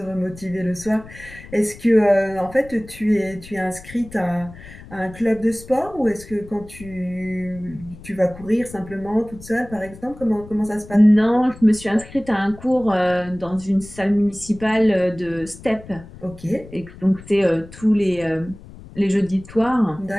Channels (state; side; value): noise; left; rumble, 18 dB below the sound